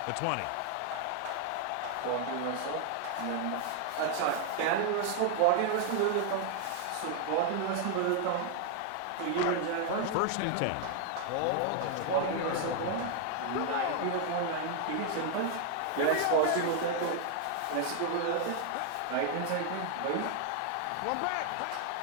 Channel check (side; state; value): both; different; correlation 0.00